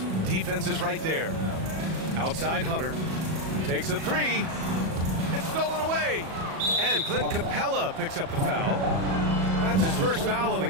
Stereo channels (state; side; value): late; left; 37 ms